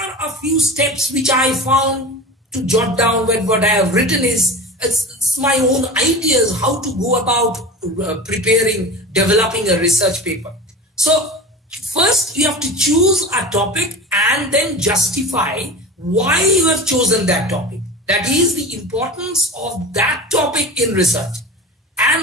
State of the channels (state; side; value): normal; both; correlation 0.33